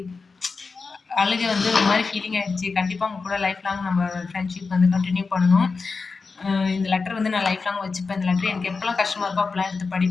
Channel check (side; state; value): right; quieter; 4.5 dB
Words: அழுகை வந்து ஒரு மாதிரி ஃபீலிங் ஆகிடுச்சு. கண்டிப்பாக உங்க கூட லைஃப் லாங் நம்ம ஃப்ரெண்ட்ஷிப் வந்து கண்டினியூ பண்ணணும். இந்த லெட்டர் வந்து நான் லைஃப் லாங் வச்சுப்பேன். இந்த லெட்டர் எனக்கு எப்போல்லாம் கஷ்டமாக இருக்கோ அப்போல்லாம் எடுத்து